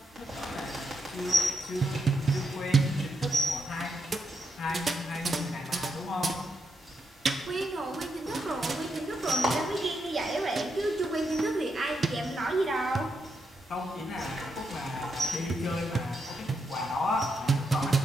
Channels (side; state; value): both; normal; correlation 0.82